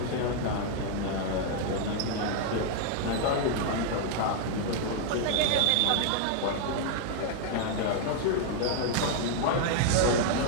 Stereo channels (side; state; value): both; different; correlation 0.00